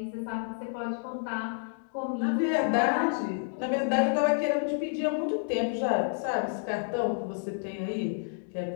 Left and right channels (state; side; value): silent; right; digital silence